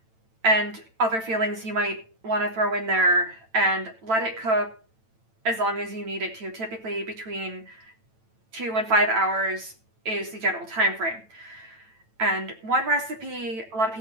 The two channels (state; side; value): late; left; 9.0 ms